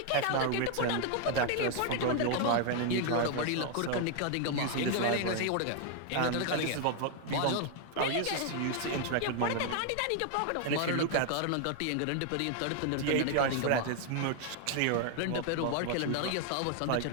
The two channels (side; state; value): both; different; correlation 0.00